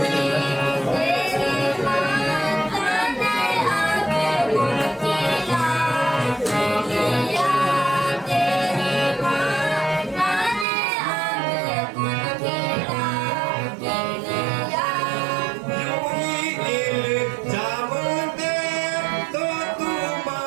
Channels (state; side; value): drops out; left; at 10.7 s